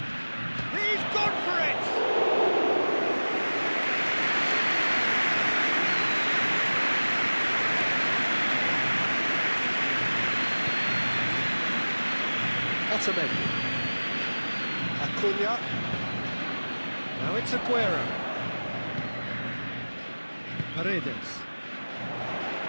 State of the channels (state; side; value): inverted; both; correlation -1.00